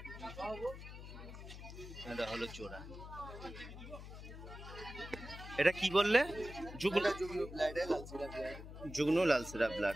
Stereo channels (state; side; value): noise; left; hum, 12 dB below the sound